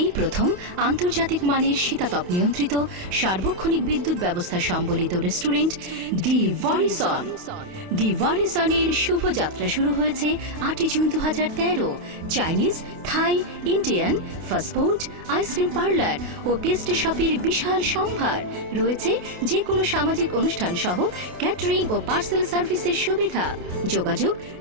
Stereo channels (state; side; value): late; left; 28 ms